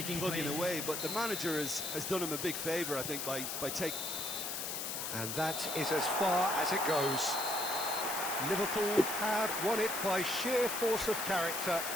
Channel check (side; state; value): left; noise; hiss, 3 dB below the sound